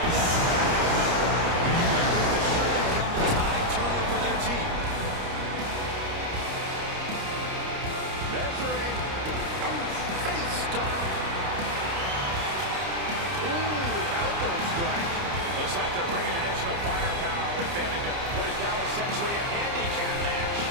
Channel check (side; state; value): left; late; 30 ms